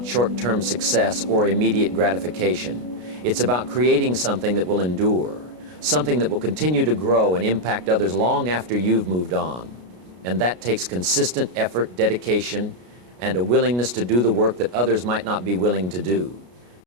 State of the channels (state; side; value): late; left; 33 ms